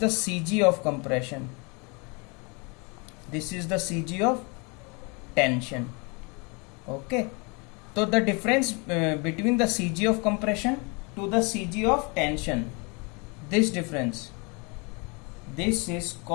CG of compression, this is the CG of tension. Okay, so the difference between the CG of compression to the CG of tension, this difference, this is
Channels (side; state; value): right; quieter; 30.9 dB